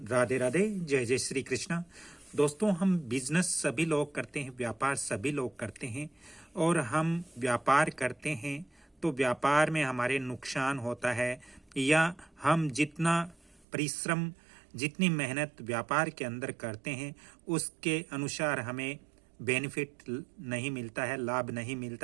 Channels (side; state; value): left; drops out; at 13.7 s